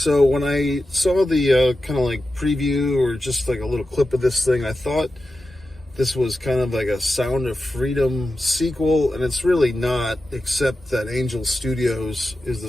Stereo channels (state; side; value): normal; both; correlation 0.92